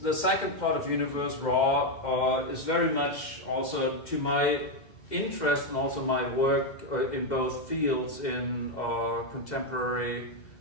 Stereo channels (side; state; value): right; late; 2.1 ms